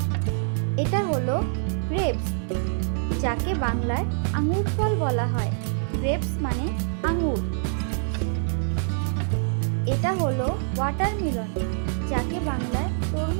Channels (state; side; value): silent; left; 61 dB below the other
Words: এটা হলো গ্রেপস, যাকে বাংলায় আঙ্গুর ফল বলা হয়। গ্রেপস মানে আঙ্গুর। এটা হলো ওয়াটারমেলন, যাকে বাংলায়